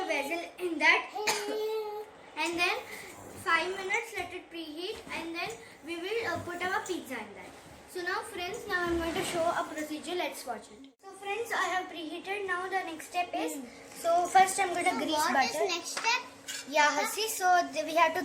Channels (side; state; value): both; identical; correlation 1.00